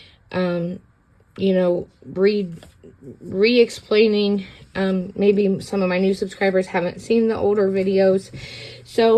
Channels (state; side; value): identical; both; correlation 1.00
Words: re-explaining, maybe some of my new subscribers haven't seen the older videos,